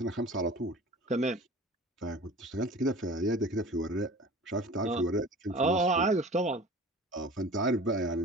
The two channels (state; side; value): normal; both; correlation 0.40